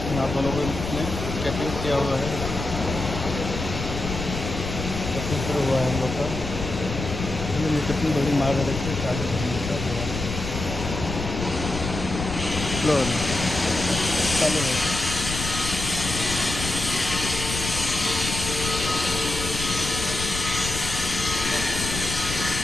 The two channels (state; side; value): noise; left; rumble, 6 dB below the sound